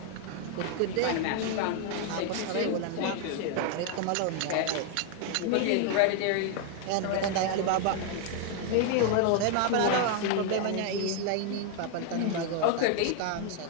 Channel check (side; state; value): both; different; correlation 0.00